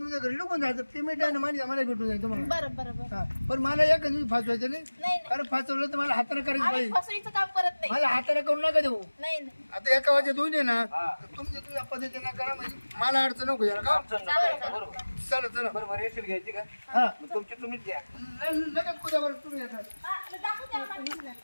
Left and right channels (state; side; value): inverted; both; correlation -1.00